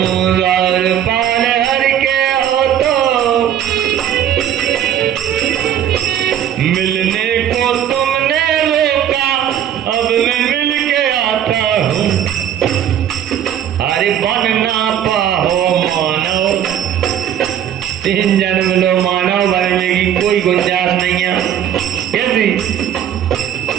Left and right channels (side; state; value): left; quieter; 10.1 dB